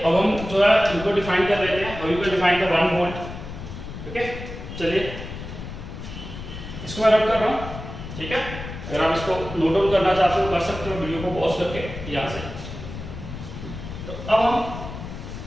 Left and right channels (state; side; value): noise; left; rumble, 10 dB below the sound